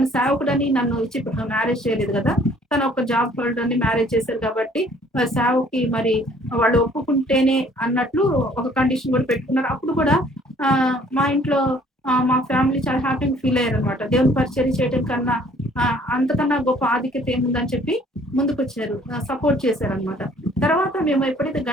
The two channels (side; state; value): both; normal; correlation 0.58